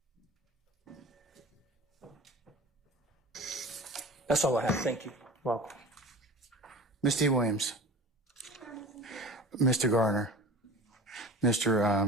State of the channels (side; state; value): both; normal; correlation 0.38